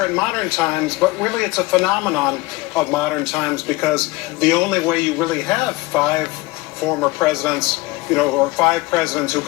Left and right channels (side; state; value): right; quieter; 21.6 dB